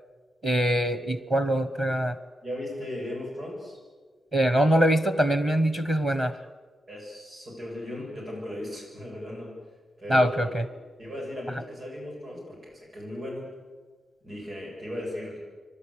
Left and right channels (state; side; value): normal; both; correlation 0.86